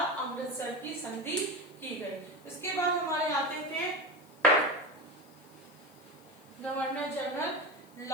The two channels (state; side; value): noise; left; hiss, 27 dB below the sound